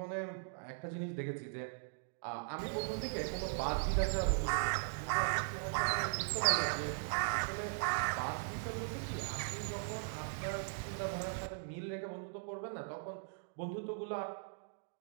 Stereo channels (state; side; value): silent; left; digital silence